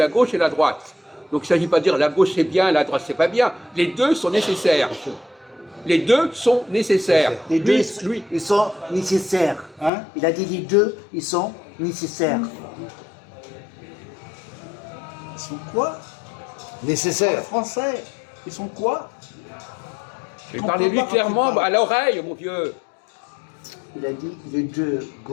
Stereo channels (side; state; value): right; drops out; at 9.9 s